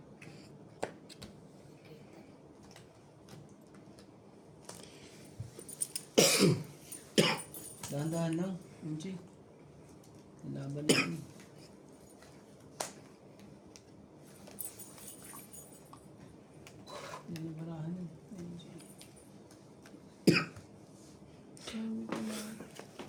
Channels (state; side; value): identical; both; correlation 1.00